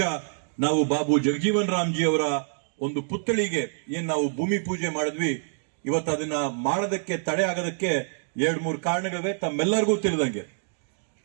ನಾವು ಬಾಬು ಜಗಜೀವನ್ ರಾಮ್ಜಿ ಅವರ ಒಂದು ಪುತ್ಥಳಿಗೆ ಏನ್ ನಾವು ಭೂಮಿ ಪೂಜೆ ಮಾಡಿದ್ವಿ, ಇವತ್ತು ಅದನ್ನ ಮಾಡೋದಕ್ಕೆ ತಡೆ ಆಗೋದಕ್ಕೆ 2-3 ಕಾರಣಗಳಿವೆ. ತಮ್ಮೆಲ್ಲರಿಗೂ ತಿಳಿದಂಗೆ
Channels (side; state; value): left; silent; digital silence